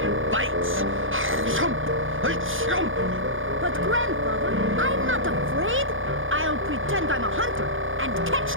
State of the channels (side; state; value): left; late; 0.58 ms